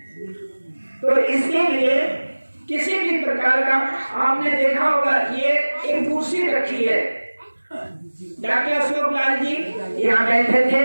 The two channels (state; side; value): inverted; both; correlation -1.00